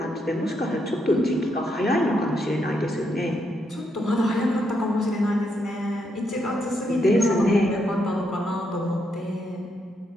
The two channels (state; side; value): normal; both; correlation 0.78